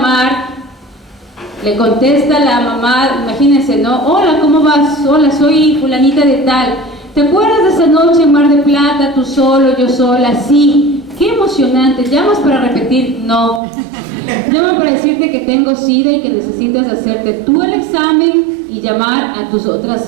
le contesta la mamá, imagínense, ¿no? Hola, ¿cómo vas? Hola, soy fulanita de tal. ¿Te acuerdas de esa noche en Mar del Plata, tú solo, yo sola? Sí. Qué emocionante. ¿Llamas para repetir? No. Llamo para decirte que tengo SIDA y que necesitas hacerte tú el examen y llamar a tus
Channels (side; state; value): left; drops out; at 13.6 s